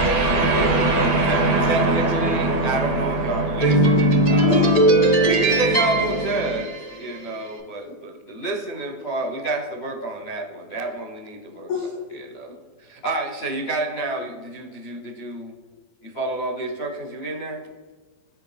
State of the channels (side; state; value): right; late; 12 ms